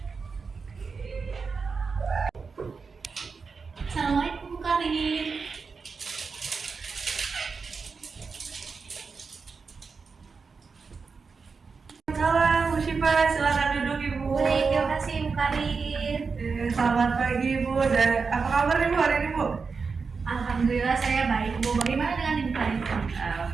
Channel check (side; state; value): left; quieter; 5.0 dB